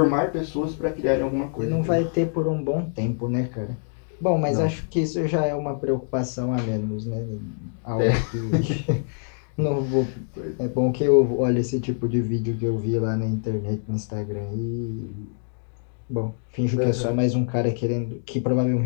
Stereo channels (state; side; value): silent; right; digital silence